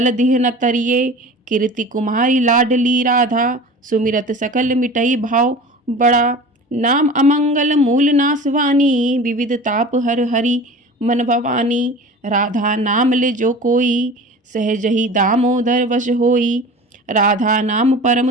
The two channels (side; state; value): both; normal; correlation 0.38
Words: दिह न तरिए। कीर्ति कुमारी लाडली राधा, सुमिरत सकल मिटई भाव बड़ा। नाम अमंगल मूल नासवानी, विविध ताप हर हरि मन भवानी। राधा नाम ले जो कोई, सहज ही दामोदर वश होई। राधा नाम